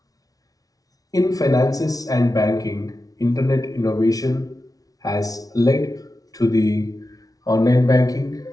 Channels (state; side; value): late; right; 0.18 ms